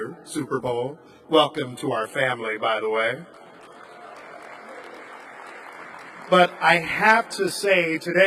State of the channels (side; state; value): both; identical; correlation 1.00